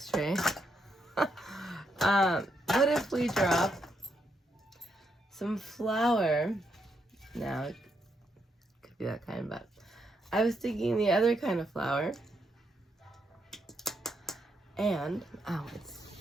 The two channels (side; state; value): both; normal; correlation 0.79